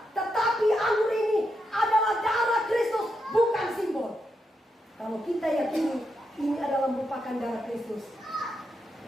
tetapi anggur ini adalah darah Kristus, bukan simbol. Kalau kita yakini ini adalah merupakan darah Kristus,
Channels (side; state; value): both; normal; correlation 0.84